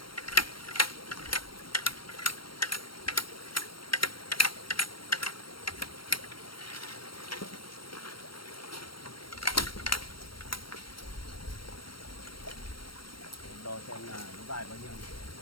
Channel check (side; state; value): right; late; 0.73 ms